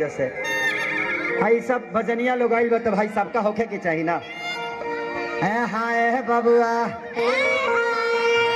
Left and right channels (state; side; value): identical; both; correlation 1.00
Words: से। भाई सब भजनिया लोग आइल बा तो भाई सबका होखे के चाहिए ना। हाय बबुआ